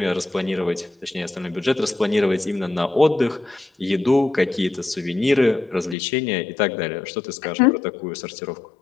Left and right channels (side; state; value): right; drops out; at 6.0 s